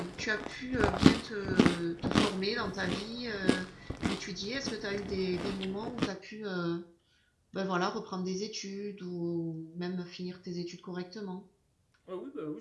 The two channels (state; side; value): identical; both; correlation 1.00